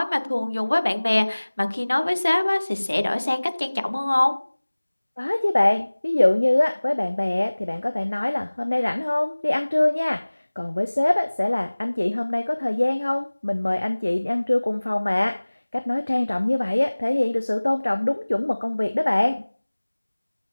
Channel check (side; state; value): both; inverted; correlation -1.00